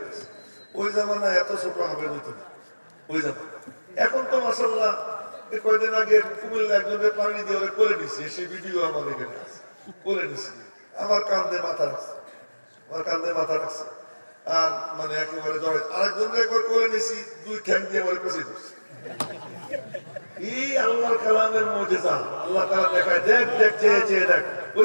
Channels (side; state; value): both; inverted; correlation -1.00